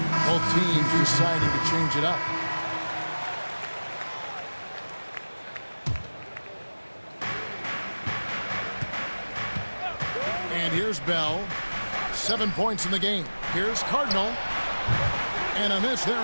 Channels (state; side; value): inverted; both; correlation -1.00